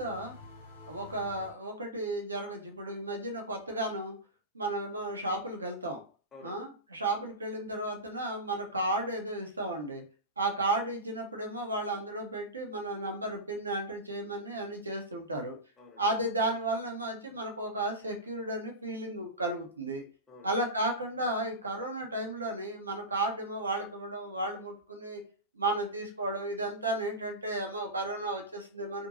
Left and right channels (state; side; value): normal; both; correlation -0.20